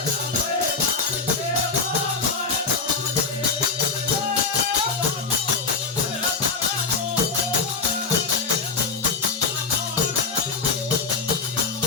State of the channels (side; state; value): right; quieter; 4.5 dB